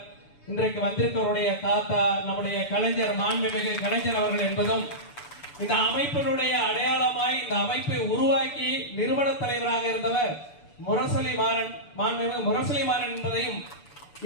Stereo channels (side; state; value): right; late; 6.9 ms